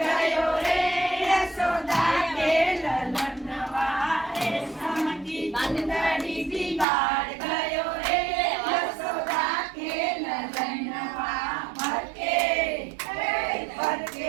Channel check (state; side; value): drops out; left; at 6.9 s